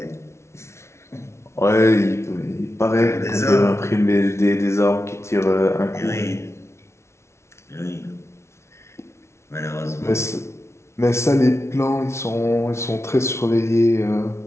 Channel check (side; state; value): right; late; 0.13 ms